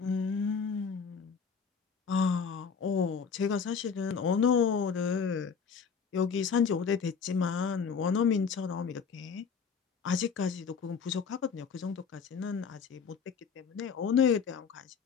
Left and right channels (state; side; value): quieter; right; 6.0 dB